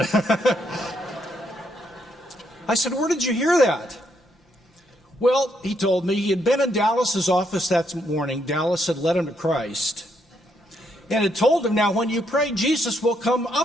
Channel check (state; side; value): normal; both; correlation 0.75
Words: I said, where did you hear that? Well, he told me he had been in Dallas's office that morning. Dallas had led him to Christ. And it told him, now when you pray, Jesus will come